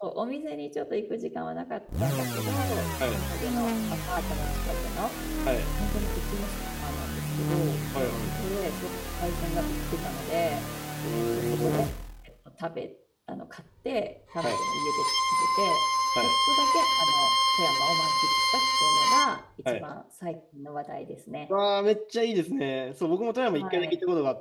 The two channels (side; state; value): both; identical; correlation 1.00